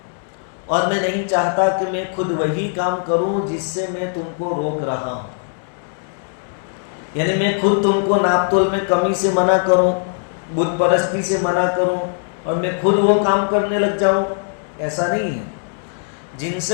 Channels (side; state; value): right; silent; 65 dB below the other